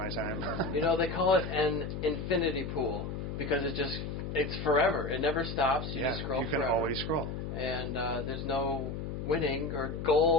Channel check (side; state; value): left; noise; hum, 5 dB below the sound